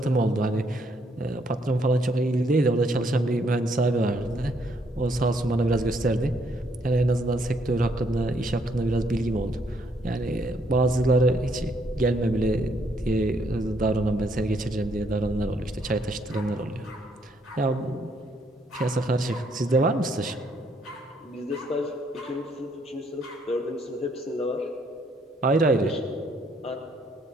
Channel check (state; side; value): normal; both; correlation 0.70